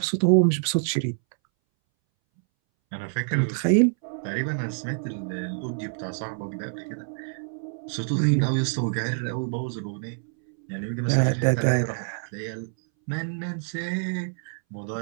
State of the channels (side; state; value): left; silent; 61 dB below the other